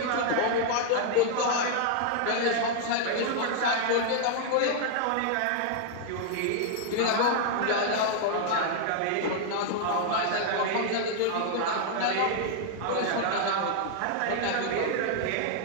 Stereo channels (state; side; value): different; both; correlation 0.00